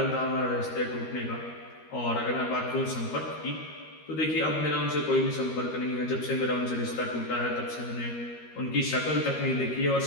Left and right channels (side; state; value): right; late; 13 ms